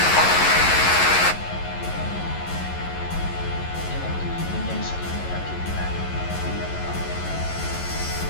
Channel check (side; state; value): right; late; 11 ms